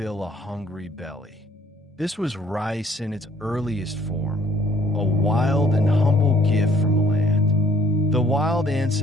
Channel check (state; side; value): normal; both; correlation 0.59